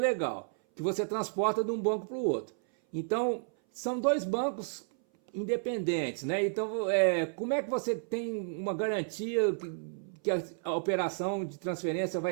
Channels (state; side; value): silent; left; 57 dB below the other